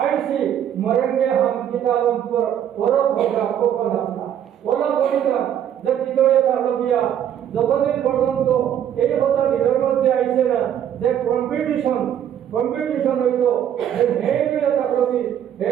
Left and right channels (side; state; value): left; quieter; 9.9 dB